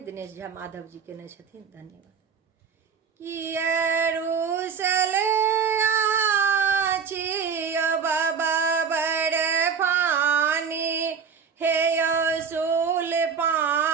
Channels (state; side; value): quieter; left; 6.4 dB